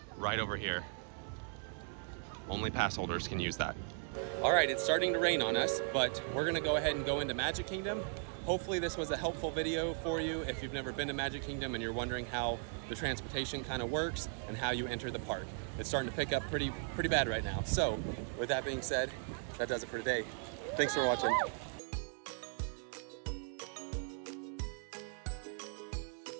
right over here. Only pass holders can use that. All right, it's starting to rain on us, but we're gonna go ahead and go into Magic Kingdom. Hopefully this was a helpful video for you if you've never been to Magic Kingdom and you're wondering how the transportation kind of works and how you enter the park. It's starting to pick up pretty bad right now. So with that being said, that does it for today. Thanks for watching.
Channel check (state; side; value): silent; left; 53 dB below the other